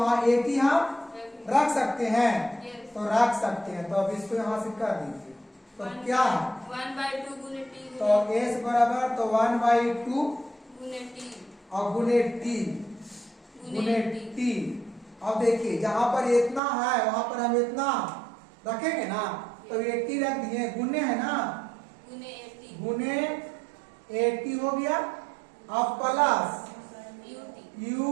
80 हम रख सकते हैं, तो रख सकते हैं। तो अब इसको यहाँ से कर दीजिए। तो क्या है? 1/2 गुने टी तो s बराबर तो 1/2 गुने टी और गुने टी गुने टी। अब देखिए जहां पर इतना है वहां पर हम इतना रखेंगे ना, तो 80 रख दिए, गुने है ना, गुने 80 गुने 80 हो गया। अब plus U T U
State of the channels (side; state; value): left; drops out; at 16.6 s